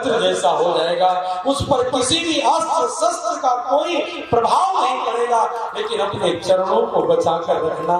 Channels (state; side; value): identical; both; correlation 1.00